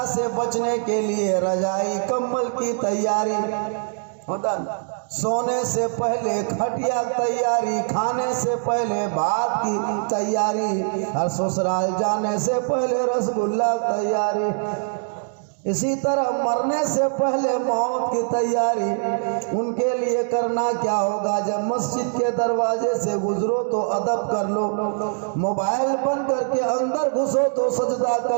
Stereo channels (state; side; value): silent; left; digital silence